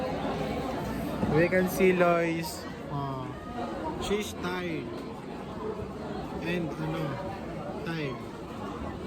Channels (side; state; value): both; identical; correlation 1.00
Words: We can see Lois. She's tired. And tired.